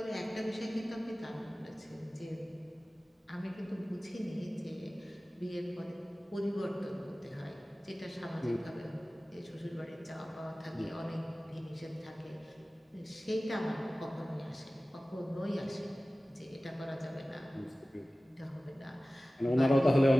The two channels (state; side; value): normal; both; correlation 0.97